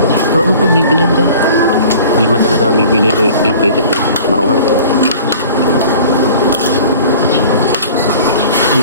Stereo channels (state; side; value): inverted; both; correlation -0.45